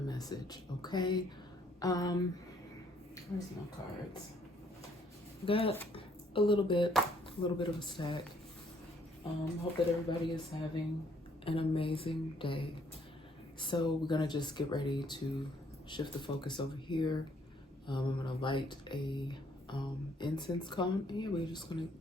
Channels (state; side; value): normal; both; correlation 0.66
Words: okay? Where's my cards? Got a little bit of a stack. Hope that everybody is having an amazing day. So we're gonna just get ready to shift the focus over here. I'm gonna light a incense cone, and yeah, we're just gonna